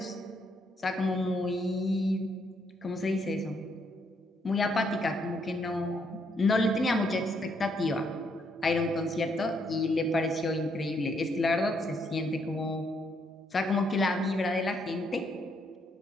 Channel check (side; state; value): both; normal; correlation 0.74